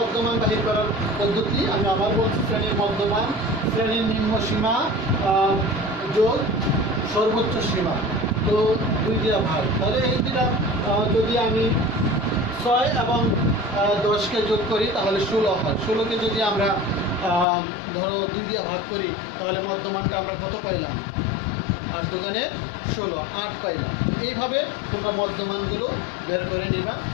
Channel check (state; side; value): drops out; right; at 17.4 s